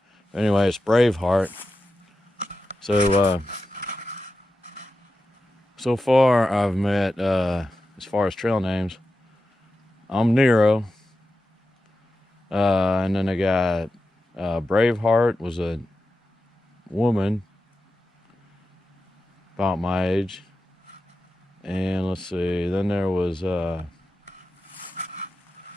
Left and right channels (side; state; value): both; normal; correlation 0.91